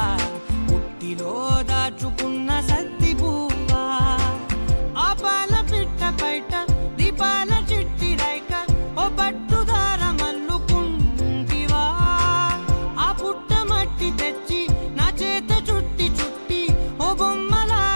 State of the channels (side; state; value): both; inverted; correlation -1.00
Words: పుట్టిలో దాచుకున్న సత్తి పువ్వా ఆపాల పిట్ట బయట దీపాల చిట్టి రైక ఓ పట్టుదార మల్లుకుంటివా ఆ పుట్ట మట్టి తెచ్చి నా చేత చుట్టి చుట్టి ఓ